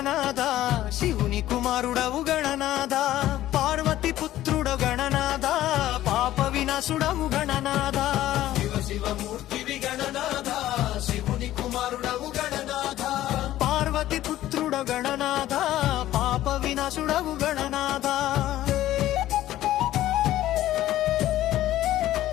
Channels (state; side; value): quieter; right; 14.0 dB